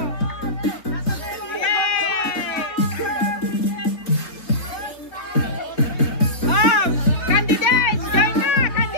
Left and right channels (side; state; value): right; late; 3.9 ms